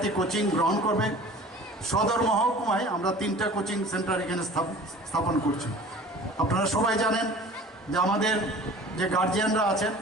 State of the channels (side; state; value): both; normal; correlation 0.44